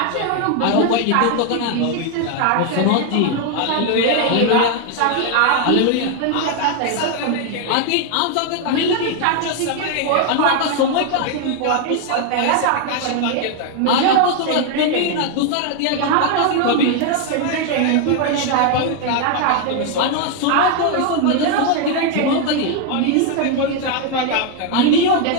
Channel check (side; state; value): both; different; correlation 0.01